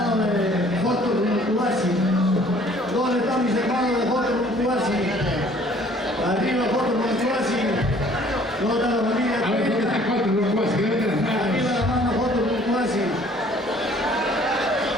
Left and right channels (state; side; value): normal; both; correlation 0.56